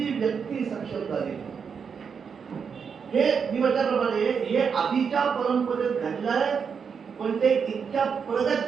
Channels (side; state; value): left; quieter; 6.3 dB